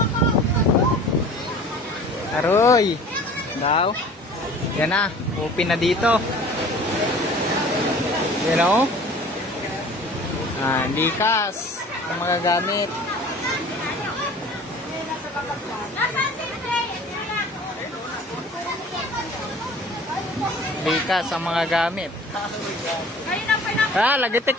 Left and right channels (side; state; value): both; normal; correlation 0.45